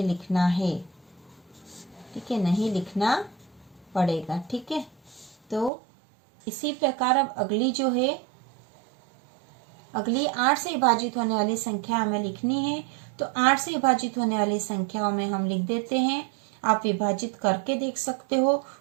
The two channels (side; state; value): left; drops out; at 5.7 s